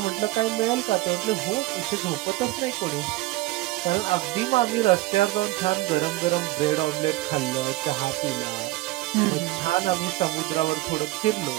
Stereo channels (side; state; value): left; quieter; 18.5 dB